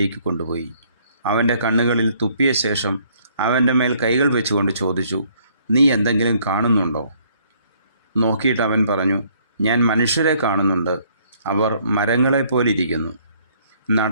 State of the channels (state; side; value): inverted; both; correlation -0.64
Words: കൊണ്ടുപോയി. അവൻ്റെ കണ്ണുകളിൽ തുപ്പിയ ശേഷം അവൻ്റെ മേൽ കൈകൾ വെച്ചുകൊണ്ട് ചോദിച്ചു, നീ എന്തെങ്കിലും കാണുന്നുണ്ടോ? നോക്കിയിട്ട് അവൻ പറഞ്ഞു, ഞാൻ മനുഷ്യരെ കാണുന്നുണ്ട്. അവർ മരങ്ങളെപ്പോലിരിക്കുന്നു.